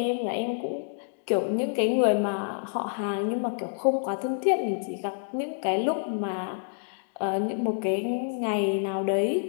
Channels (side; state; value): right; silent; digital silence